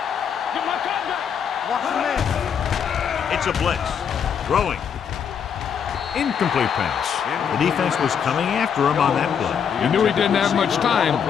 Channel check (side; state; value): right; quieter; 7.5 dB